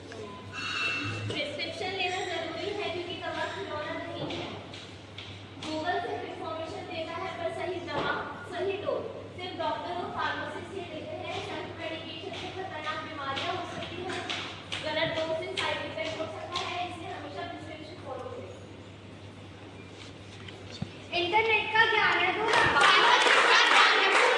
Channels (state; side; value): identical; both; correlation 1.00